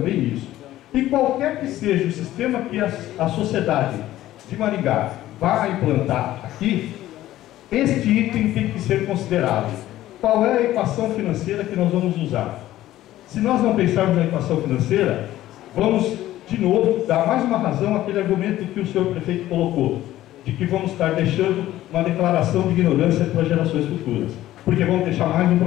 isso. E qualquer que seja o sistema que a sociedade de Maringá vai implantar aqui, este item tem que ser considerado. Qual é a equação financeira que nós vamos usar? Se nós não pensarmos na equação financeira, vamos, de novo, dar mais uma razão àquele argumento que o senhor prefeito colocou, de que vamos estar deixando uma declaração de ignorância para gerações futuras, porque vamos deixar mais um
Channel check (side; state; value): right; quieter; 14.5 dB